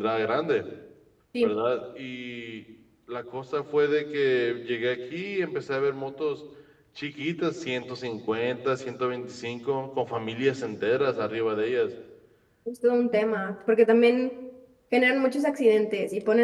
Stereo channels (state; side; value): identical; both; correlation 1.00